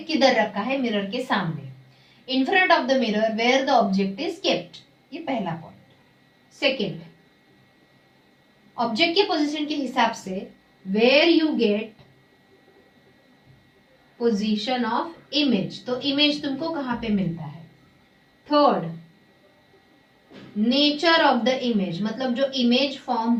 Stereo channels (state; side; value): identical; both; correlation 1.00